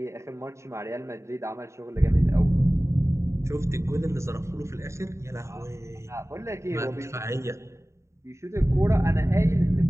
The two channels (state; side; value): late; left; 0.14 ms